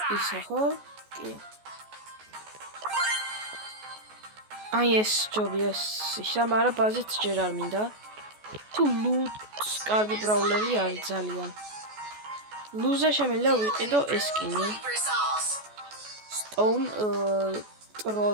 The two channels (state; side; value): late; left; 14 ms